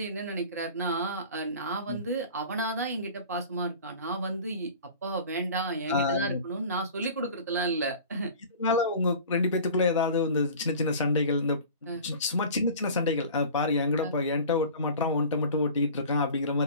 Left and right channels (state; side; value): inverted; both; correlation -0.40